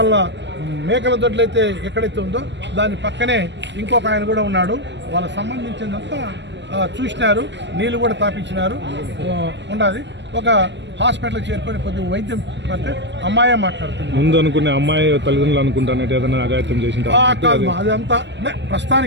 మేకల దొడ్లు అయితే ఎక్కడైతే ఉందో దాని పక్కనే ఇంకొక ఆయన కూడా ఉన్నాడు. వాళ్ళకి సంబంధించినంతా చూసినారు, నీళ్ళు కూడా తాపించినారు. ఉండాలి ఒక హాస్పిటల్కి చేరుకొని కొద్దిగా వైద్యం పడితే అమ్మాయే మాట్లాడుతుంది. ముందు అనుకునే అమ్మాయి తల్లిదండ్రులు అనుకుంటానంటే ఏదైనా అఘాయిత్యం చేసింటారు కాదు, అదంతా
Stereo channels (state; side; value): late; left; 0.52 ms